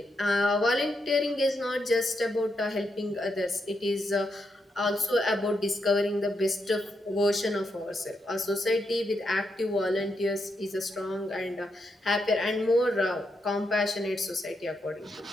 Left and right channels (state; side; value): normal; both; correlation 0.82